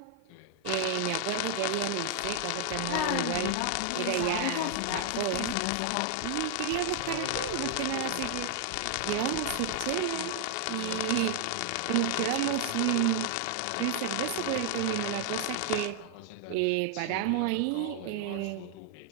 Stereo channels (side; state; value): both; different; correlation 0.00